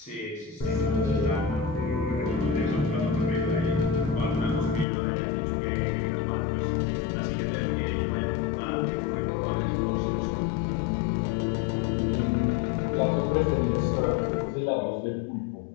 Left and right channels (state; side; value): drops out; right; at 4.9 s